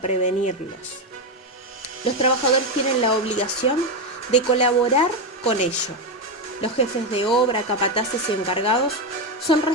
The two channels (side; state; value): both; normal; correlation 0.09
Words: Los trabajadores tienen la obligación de colaborar con ello. Los jefes de obra, capataces y encargados son